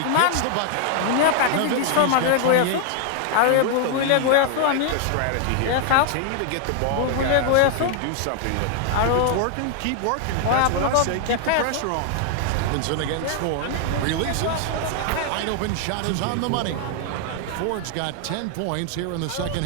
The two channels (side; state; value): both; different; correlation 0.00